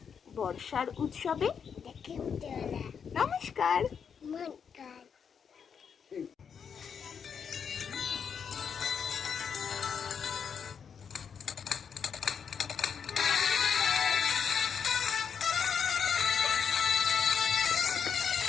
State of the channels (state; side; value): quieter; right; 6.9 dB